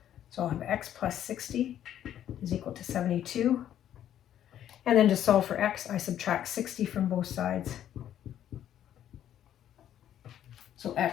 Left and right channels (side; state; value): right; quieter; 10.9 dB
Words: So I'll have X plus 60 is equal to 72. And then to solve for X, I subtract 60 from both sides. So